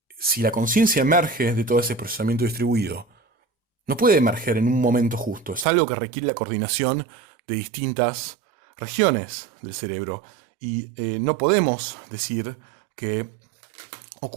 si la conciencia emerge de todo ese procesamiento distribuido, no puede emerger en un momento justo, es algo que requiere la coordinación de distintas regiones del cerebro. Y no podemos decir que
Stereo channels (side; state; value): left; drops out; at 5.7 s